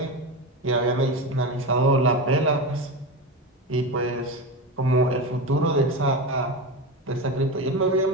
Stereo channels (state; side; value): normal; both; correlation 0.21